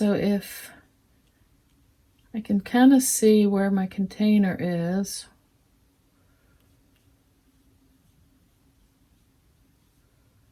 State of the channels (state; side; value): identical; both; correlation 1.00